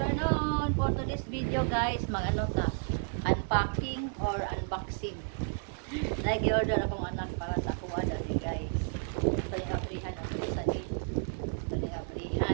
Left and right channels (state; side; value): silent; left; 57 dB below the other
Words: For today's video guys, mag-ano ta, unpacking or unboxing. Nag-order akong anak para sa kuha dali guys. Ito yung abrihan at isa din. Ito yung